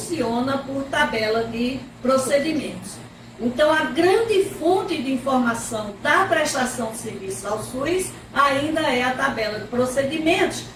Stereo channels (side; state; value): both; identical; correlation 1.00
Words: por tabela de procedimentos. Então, a grande fonte de informação da prestação de serviços ao SUS ainda é a tabela de procedimentos,